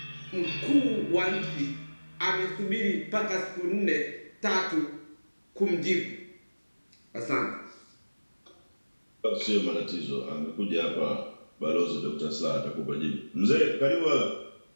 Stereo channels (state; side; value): inverted; both; correlation -1.00